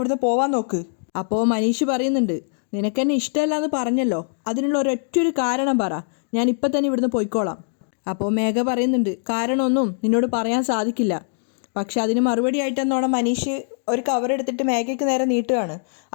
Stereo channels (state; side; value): silent; right; digital silence